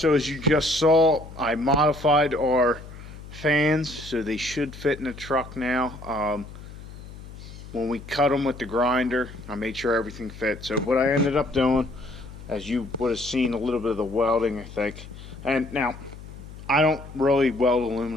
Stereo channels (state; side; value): noise; left; hum, 15 dB below the sound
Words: as you just saw, I modified our fans so they should fit in the truck now. When we cut them with the grinder, I made sure everything fit. So what I ended up doing, as you would have seen a little bit of the welding, I think. And now, I don't really weld